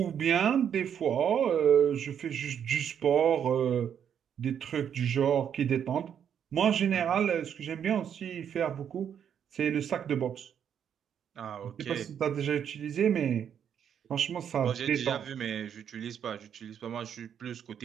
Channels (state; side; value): quieter; left; 8.5 dB